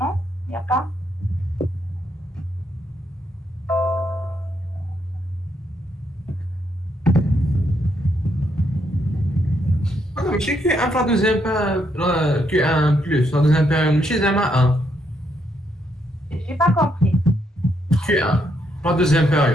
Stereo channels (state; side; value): normal; both; correlation 0.76